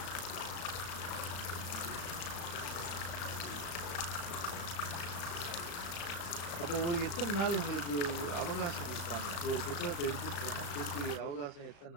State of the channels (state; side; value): late; right; 35 ms